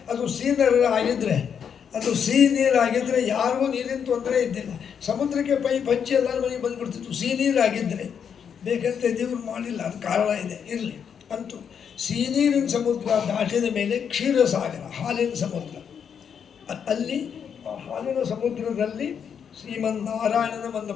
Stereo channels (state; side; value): quieter; right; 7.5 dB